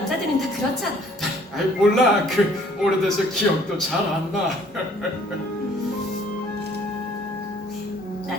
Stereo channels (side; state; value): both; normal; correlation 0.58